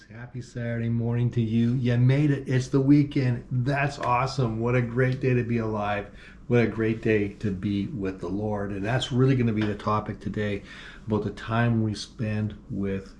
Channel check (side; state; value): both; identical; correlation 1.00